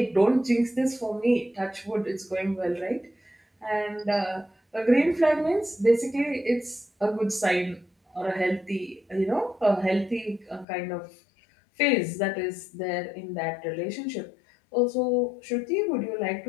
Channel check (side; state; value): right; drops out; at 10.7 s